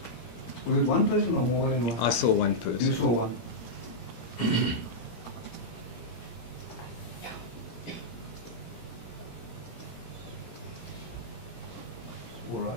Was it one person or more than one? I saw one You person. saw one. All right,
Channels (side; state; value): right; late; 17 ms